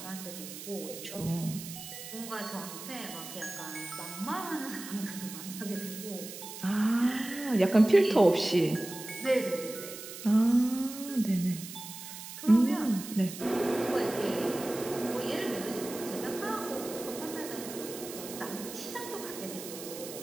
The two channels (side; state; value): right; noise; hiss, 11 dB below the sound